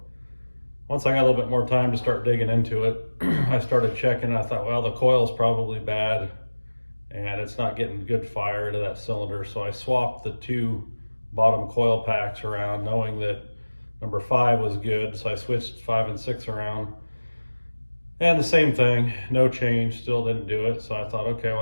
once I got a little bit more time to start digging into it, I started checking. I thought, well, the coil's probably bad and it's not getting good fire to that cylinder. So I swapped the two bottom coil packs around, knowing that number 5 was good. So I switched 5 and 6 around. And the same thing, no change, still didn't do it. So I thought, okay, well,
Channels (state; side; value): inverted; both; correlation -1.00